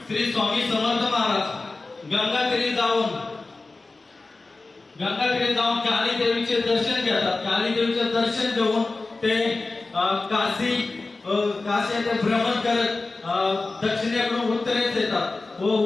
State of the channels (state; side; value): quieter; right; 3.5 dB